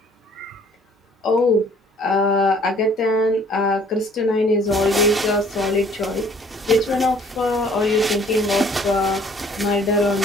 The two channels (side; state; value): both; normal; correlation 0.56